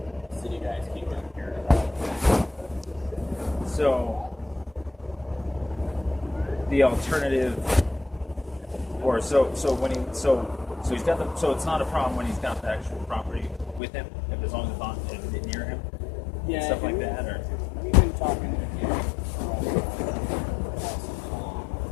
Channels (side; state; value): right; drops out; at 13.8 s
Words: city guys keep down here. So, the alternative, or so he's got so it's not a problem when he's got the actual property with him, as long as it's on near him, stuff like that, or we've been talking to him about it,